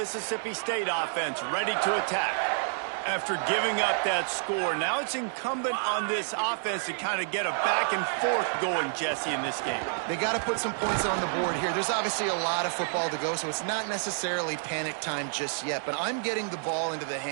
State offense, ready to attack. After giving up that score, now it's incumbent on this offense to kind of get a back and forth going, Jesse, in this game. They got to put some points on the board here. There's obviously a lot of football to go, so it's not necessarily panic time just yet, but I'm getting the ball into the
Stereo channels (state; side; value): silent; left; digital silence